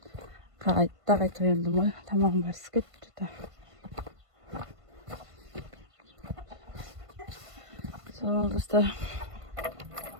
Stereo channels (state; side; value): late; left; 1.5 ms